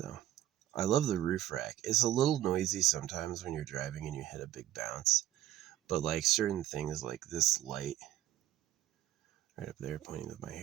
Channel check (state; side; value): quieter; left; 13.1 dB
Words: I love the roof rack. It's a little noisy sometimes when you're driving and you hit a big bounce. But like certain things like this light right up there pointing with my